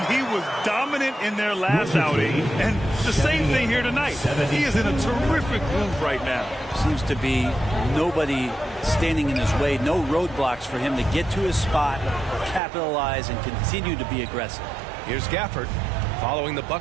he was dominant in their last outing. And the same thing here tonight. He is in a terrific groove right now. Seems to be nobody standing in his way. No roadblocks for him to get to his spot, capitalize, and continue to be aggressive. Here's Gafford following the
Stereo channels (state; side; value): drops out; left; at 12.6 s